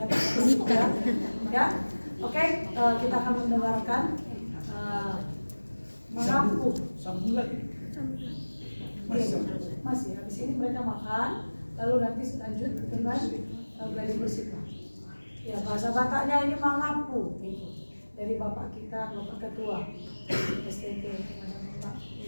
tangan juga. Ya, oke. Kita akan mendengarkan mengaku. Sambung lagi. Masih. Habis ini mereka makan, lalu nanti lanjut dengan belajar bersikap. Ya, bahasa Bataknya ini mengaku. Dari Bapak kita, Bapak Ketua STT, Bapak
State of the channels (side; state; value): both; inverted; correlation -1.00